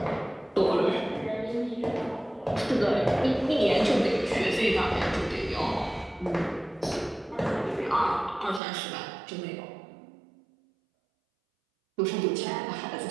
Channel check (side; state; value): left; drops out; at 8.6 s